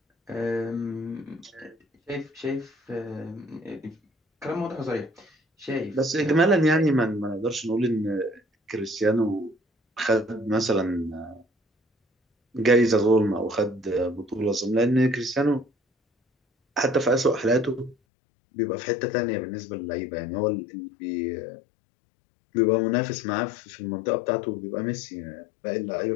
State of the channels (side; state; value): right; drops out; at 17.9 s